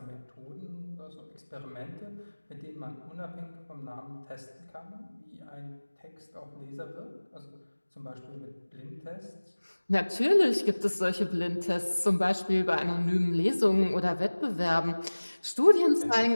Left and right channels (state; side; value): inverted; both; correlation -1.00